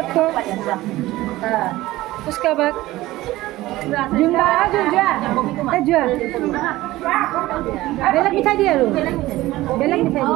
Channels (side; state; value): left; quieter; 17.4 dB